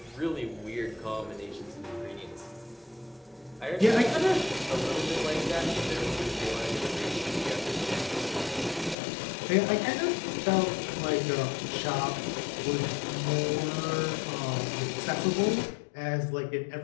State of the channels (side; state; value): right; drops out; at 9.0 s